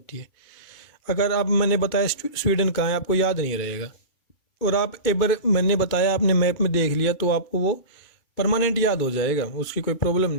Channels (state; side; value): late; right; 2.5 ms